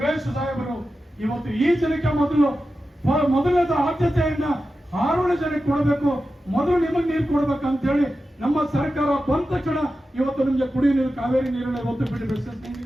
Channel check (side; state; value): both; normal; correlation 0.92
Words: ಸಾಹೇಬರು ಇವತ್ತು ಈ ಜನಕ್ಕೆ ಮೊದಲನೇದ ಆದ್ಯತೆಯನ್ನ ಹಾರೋಹಳ್ಳಿ ಜನಕ್ಕೆ ಕೊಡಬೇಕು, ಮೊದಲು ನಿಮಗೆ ನೀರು ಕೊಡ್ಬೇಕಂತ ಹೇಳಿ ನಮ್ಮ ಸರ್ಕಾರ ಬಂದ ತಕ್ಷಣ ಇವತ್ತು ನಿಮಗೆ ಕುಡಿಯುವ ನೀರು, ಕಾವೇರಿ ನೀರನ್ನ ಇವತ್ತು